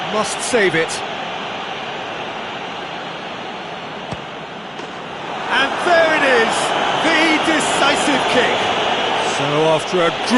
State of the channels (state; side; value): identical; both; correlation 1.00